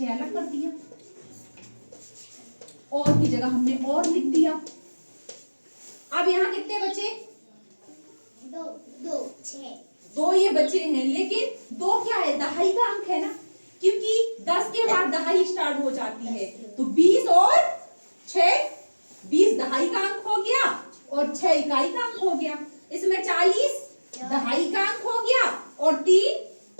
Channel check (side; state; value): both; inverted; correlation -1.00